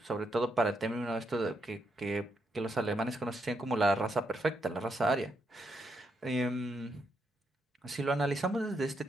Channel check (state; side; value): normal; both; correlation 0.80